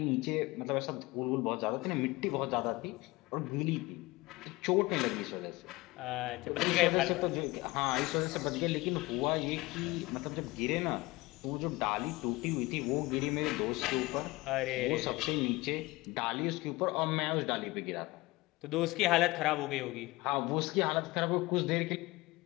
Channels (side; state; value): right; quieter; 21.5 dB